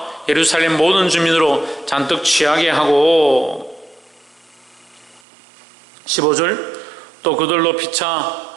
예루살렘 모든 주민으로 잔뜩 취하게 하고. 15절 또 그들로 피차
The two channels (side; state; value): left; drops out; at 5.2 s